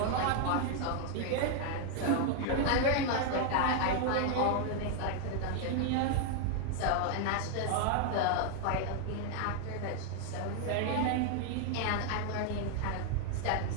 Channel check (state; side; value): different; both; correlation 0.00